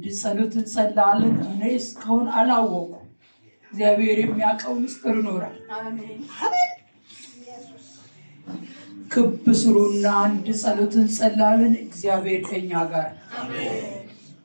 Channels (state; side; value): inverted; both; correlation -1.00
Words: ጸሎት እንጸልያለን። እኔ እስካሁን አላወኩም። እግዚአብሔር የሚያውቀው ምስጢር ይኖራል። አሜን። ክብ ስሩና አንድ ጸሎት እንጸልያለን። እግዚአብሔር ከኛ ጋር አሜን።